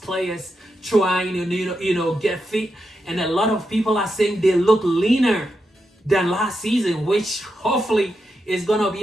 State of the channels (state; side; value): normal; both; correlation 0.86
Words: trying to get fit. And a lot of people are saying they look leaner than last season, which hopefully is gonna